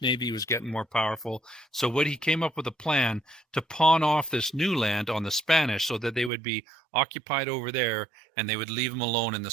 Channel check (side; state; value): left; drops out; at 6.3 s